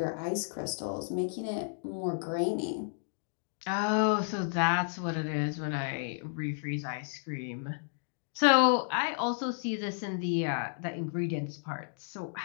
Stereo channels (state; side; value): silent; right; digital silence